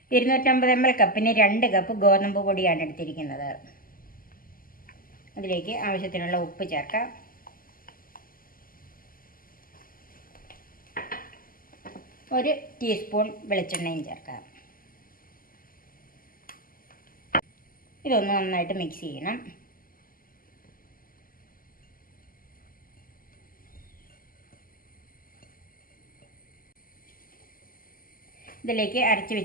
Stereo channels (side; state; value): right; late; 0.41 ms